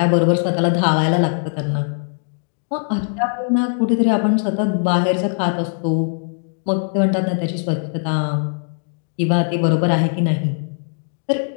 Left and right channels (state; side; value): silent; right; digital silence